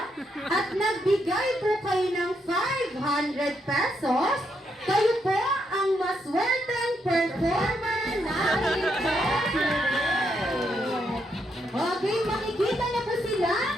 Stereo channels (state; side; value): normal; both; correlation 0.78